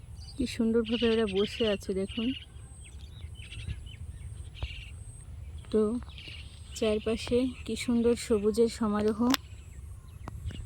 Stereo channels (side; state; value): both; identical; correlation 1.00